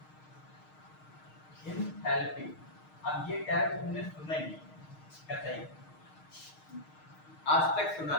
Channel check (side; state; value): right; late; 6.5 ms